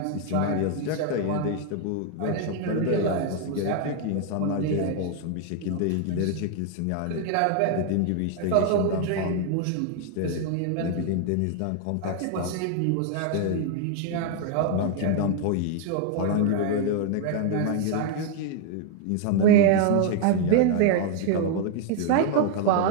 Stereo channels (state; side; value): different; both; correlation 0.00